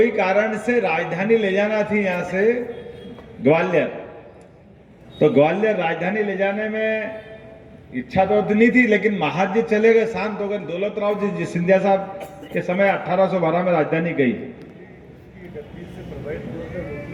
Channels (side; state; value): both; identical; correlation 1.00